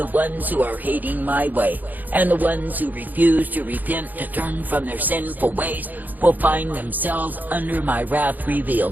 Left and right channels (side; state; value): left; late; 0.084 ms